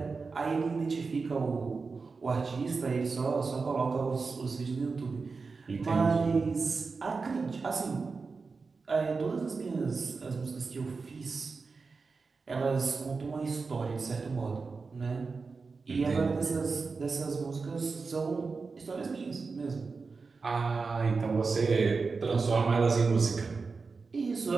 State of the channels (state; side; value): quieter; left; 4.5 dB